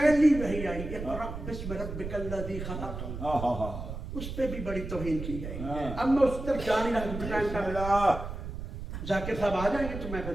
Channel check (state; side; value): noise; right; rumble, 7 dB below the sound